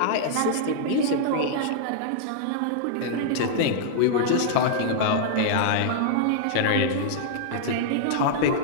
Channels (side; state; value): both; different; correlation -0.01